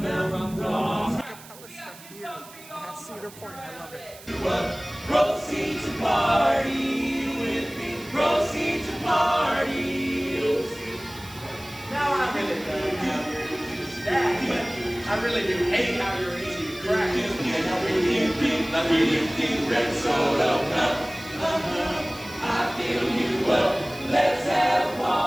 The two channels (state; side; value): noise; right; hiss, 19 dB below the sound